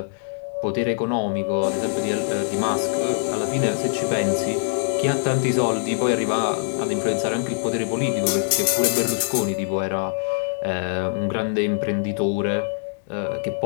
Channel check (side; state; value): right; silent; digital silence